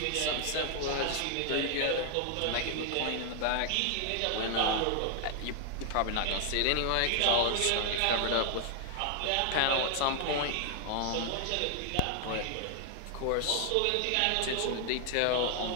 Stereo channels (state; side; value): different; both; correlation 0.00